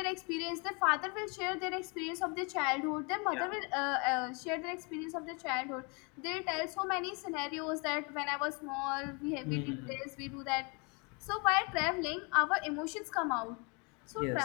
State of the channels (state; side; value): quieter; right; 32.0 dB